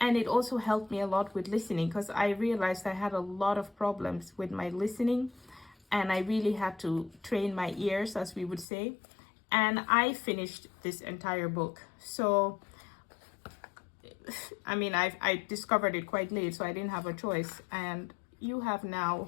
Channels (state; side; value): drops out; right; at 8.7 s